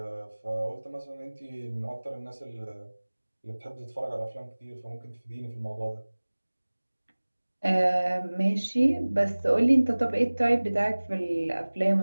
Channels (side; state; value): both; inverted; correlation -1.00